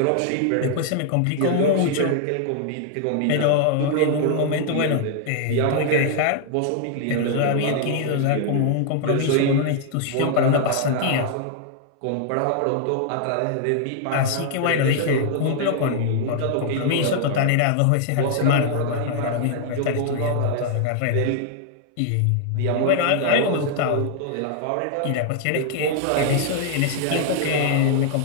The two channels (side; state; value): both; different; correlation 0.00